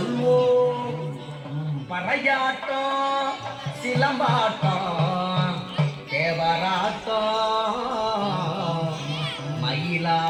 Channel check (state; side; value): identical; both; correlation 1.00